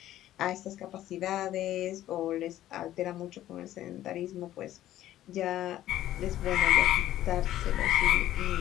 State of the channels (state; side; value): quieter; right; 13.4 dB